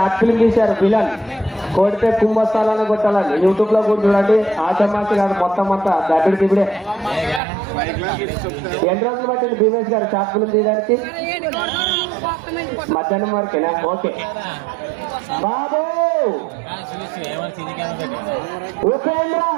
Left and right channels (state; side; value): drops out; left; at 7.4 s